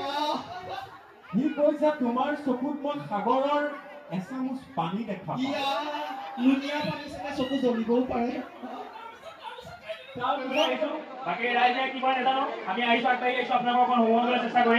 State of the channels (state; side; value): identical; both; correlation 1.00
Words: সি কৈছে তোমাৰ চকুত মই সাগৰৰ এচামুচ পানী দেখা পাওঁ লুনিয়া পানী চাগে চকু জ্বলিবও পাৰে বাকী ৰাইজে কিবা নেজানো আমি আহিছো আগবাঢ়ি আহিছো আপোনালোকক অকণ সোমোৱাবলৈ চেষ্টা